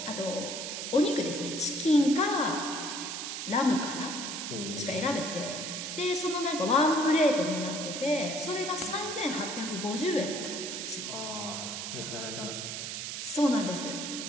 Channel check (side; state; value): right; noise; hiss, 5 dB below the sound